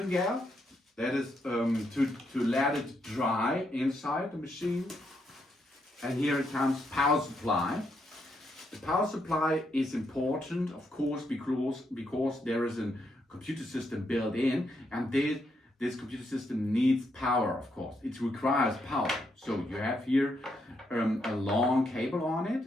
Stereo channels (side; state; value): both; normal; correlation 0.78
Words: gel. That is to let it dry inside the machine. And here it comes power supply. The power supply is important, of course, because there is a computer system built in, and this computer system needs power, of course. It requires power. So you have here a long cable on it,